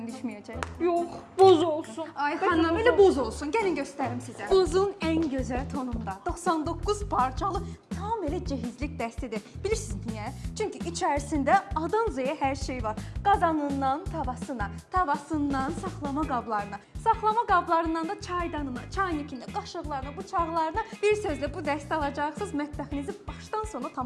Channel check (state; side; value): identical; both; correlation 1.00